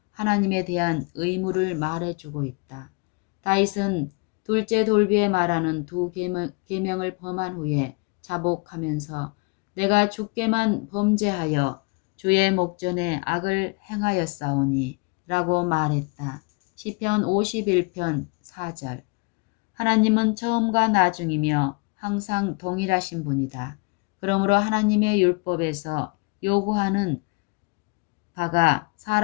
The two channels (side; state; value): right; quieter; 31.3 dB